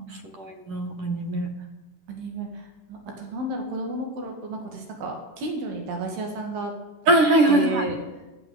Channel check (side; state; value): left; late; 10 ms